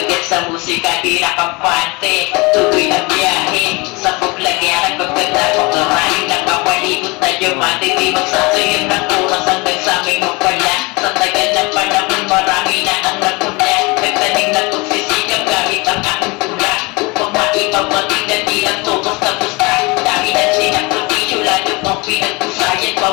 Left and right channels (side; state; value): right; quieter; 26.2 dB